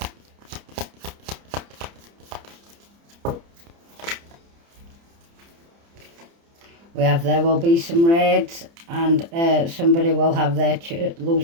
We have there will be some raids and somebody will have their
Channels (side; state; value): left; late; 30 ms